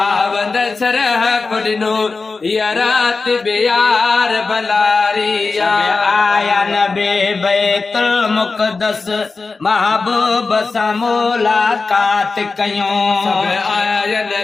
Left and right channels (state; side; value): quieter; right; 4.1 dB